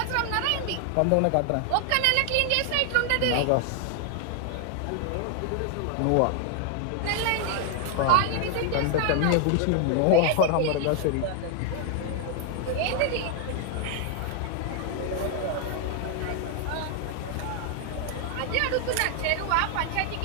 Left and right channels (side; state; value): both; different; correlation 0.00